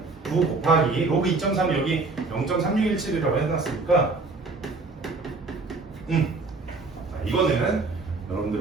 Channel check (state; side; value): quieter; left; 3.8 dB